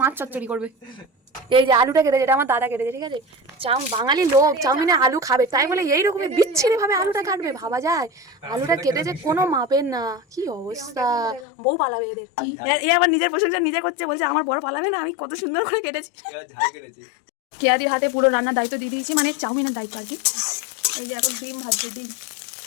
মাছ চচ্চড়ি করবে। এই যে আলুটা কেটেছে, এটা আমার দাদা কেটেছে, ঠিক আছে। বাঙালি লোক চাউমিনে আলু খাবে, তাই বলে এইরকমই বিচ্ছিরি ভাবে আলুটা কাটবে, ভাবা যায়? আলুটা কেটেছে কোনো মাপের না, কি অবস্থা। বউ পালাবে এদের। এ আবার নিজের প্রশংসা নিজে করছে, বলছে আমার বড় পালাবে না, আমি কত সুন্দর করে কেটেছি। কেয়াদির হাতে পুরো রান্নার দায়িত্ব দিয়ে দিয়েছি, মানে চাউমিনের দায়িত্ব আর কি। এই যে এখন ডিম ভাজছে, ডিম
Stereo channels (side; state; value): right; drops out; at 11.5 s